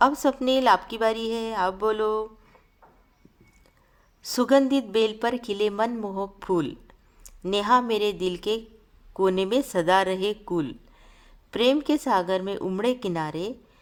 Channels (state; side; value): identical; both; correlation 1.00